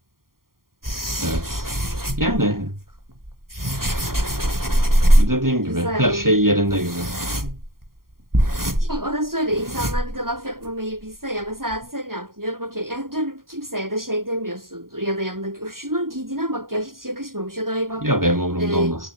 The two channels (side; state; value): left; late; 0.92 ms